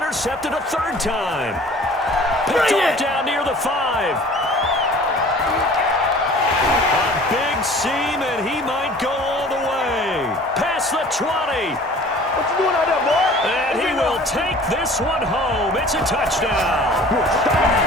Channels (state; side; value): normal; both; correlation 0.47